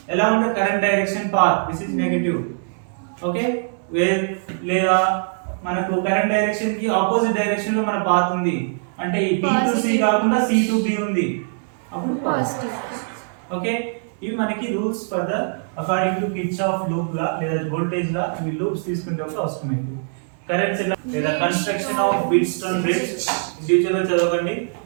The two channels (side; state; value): left; silent; digital silence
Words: along the current direction path this is negative. Okay, లేదా మనకు కరెంట్ డైరెక్షన్ కి ఆపోజిట్ డైరెక్షన్ లో మన పాత్ ఉంది అంటే ఈ B to C కాకుండా C to B ఉంది, అప్పుడు పాజిటివ్. ఓకే, ఇవి మనకి rules for the according to Kirchhoff loop law లేదా వోల్టేజ్ లా ఈ లూప్స్ తీసుకునేటప్పుడు అవసరమైంది. కరెంట్స్ లేదా construction of Wheatstone bridge detail గా చదవండి.